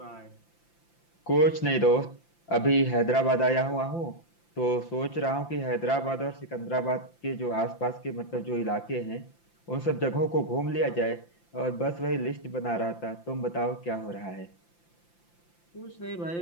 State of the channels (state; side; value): late; right; 5.8 ms